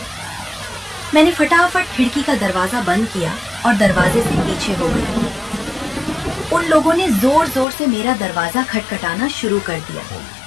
मैंने फटाफट खिड़की का दरवाजा बंद किया और दरवाजे से पीछे हो गई। उन लोगों ने जोर जोर से मेरा दरवाजा खटखटाना शुरू कर दिया।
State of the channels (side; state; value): right; drops out; at 7.7 s